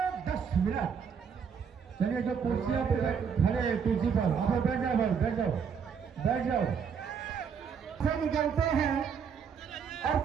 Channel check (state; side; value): quieter; left; 6.8 dB